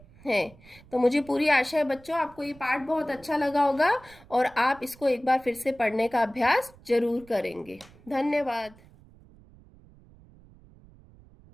हैं। तो मुझे पूरी आशा है बच्चों आपको ये पाठ बहुत अच्छा लगा होगा और आप इसको एक बार फिर से पढ़ने का अभ्यास जरूर करेंगे। धन्यवाद।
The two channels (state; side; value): noise; right; rumble, 25 dB below the sound